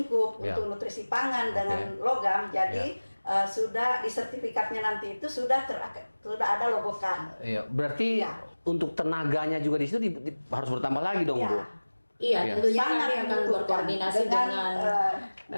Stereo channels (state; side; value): inverted; both; correlation -1.00